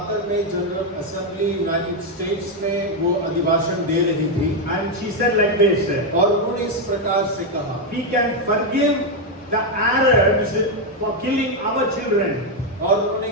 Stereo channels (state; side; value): normal; both; correlation 0.03